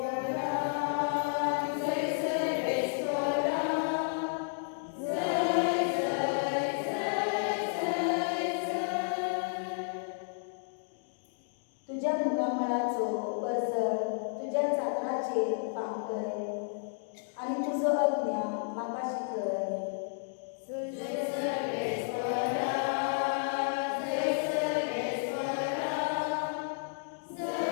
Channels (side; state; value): right; silent; digital silence